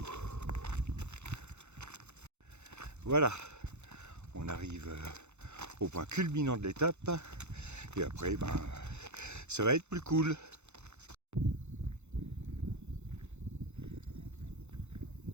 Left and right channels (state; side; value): late; left; 0.82 ms